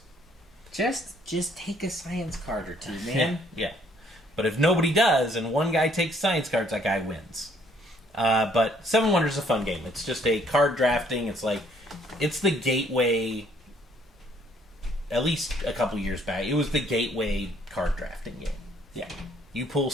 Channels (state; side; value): normal; both; correlation 0.64